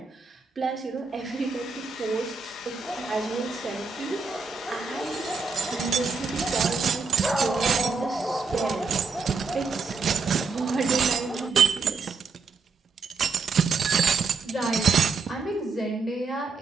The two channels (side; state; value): left; quieter; 4.7 dB